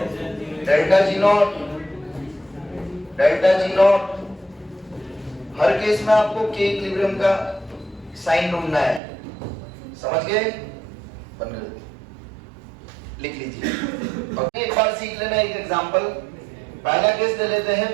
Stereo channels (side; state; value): left; drops out; at 9.0 s